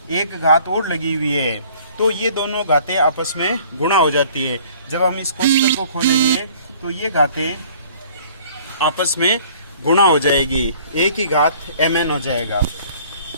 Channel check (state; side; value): inverted; both; correlation -0.54